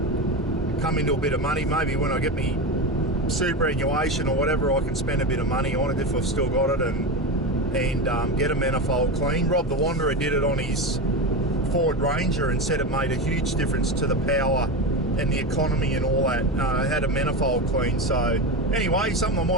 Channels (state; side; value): normal; both; correlation 0.20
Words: come into a bit of money, maybe when I get me superannuation or whatever, I can spend a bit of money on it if I've still got it and get a manifold clean. Rob the Wanderer did it on his Ford Ranger and said it made a huge difference to the power and the economy and all that. Had a manifold clean. So anyway, something I